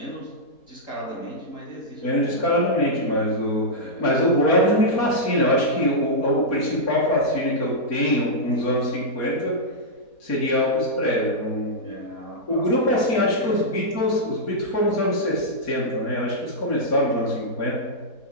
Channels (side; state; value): right; late; 4.3 ms